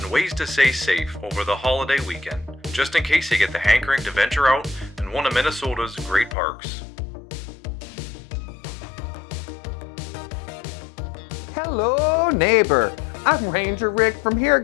ways to stay safe over the holiday weekend, just in case you get the hankering to venture out in one of Minnesota's great parks. Hello, neighbor. I'm Ranger Rick from here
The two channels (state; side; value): drops out; right; at 6.4 s